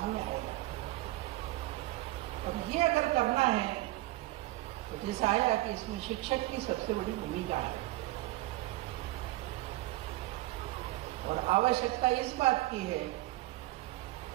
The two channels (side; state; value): left; quieter; 18.3 dB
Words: आएगा। अब ये अगर करना है तो जैसा आया कि इसमें शिक्षक की सबसे बड़ी भूमिका है। और आवश्यकता इस बात की है